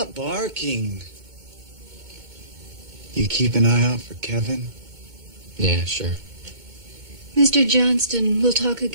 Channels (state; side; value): late; left; 2.2 ms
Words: barking. You keep an eye out for Kevin? Yeah, sure. Mr. Johnston, we'll talk